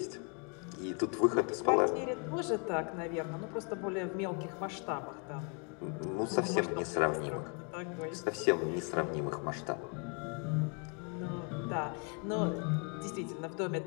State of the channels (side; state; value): right; quieter; 37.9 dB